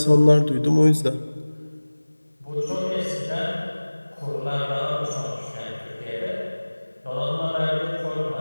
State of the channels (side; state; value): both; inverted; correlation -1.00